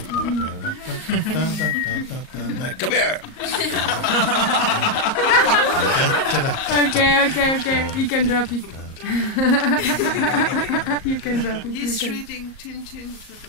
come here. Okay. You can drop it. You can drop it. He's reading Tintin to the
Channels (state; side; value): late; right; 38 ms